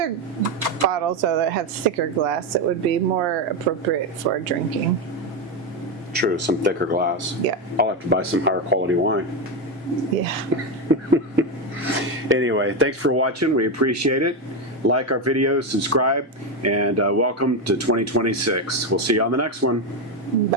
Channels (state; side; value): normal; both; correlation 0.11